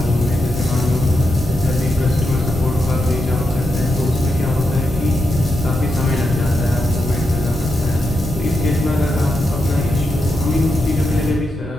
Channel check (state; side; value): normal; both; correlation 0.85